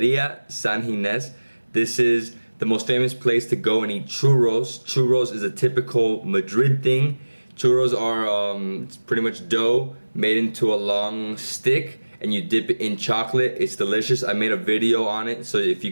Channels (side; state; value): both; inverted; correlation -1.00